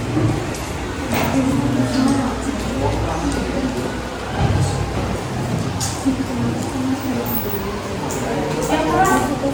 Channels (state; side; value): identical; both; correlation 1.00